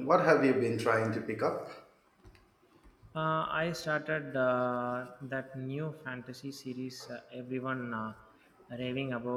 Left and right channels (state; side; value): identical; both; correlation 1.00